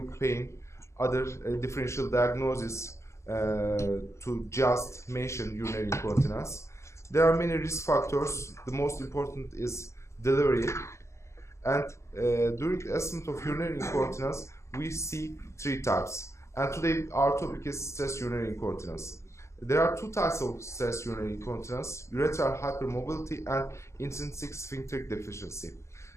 pain, other differential diagnoses to just mention urinary incontinence. There are many risk factors. The most important is delivery. And during the assessment of urinary incontinence, we see 3 types. And today our topic is stress urinary incontinence. There are 2 types of stress urinary incontinence: urethral hypermobility and intrinsic sphincter deficiency.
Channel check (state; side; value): late; right; 0.14 ms